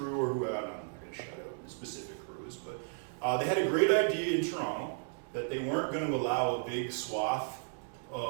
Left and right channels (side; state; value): left; silent; digital silence